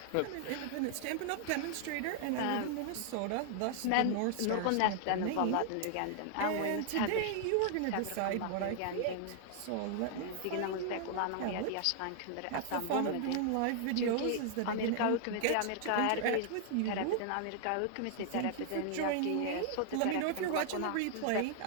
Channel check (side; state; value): both; different; correlation -0.01